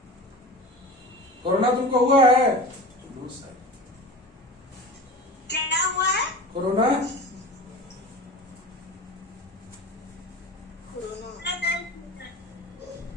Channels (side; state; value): both; normal; correlation 0.33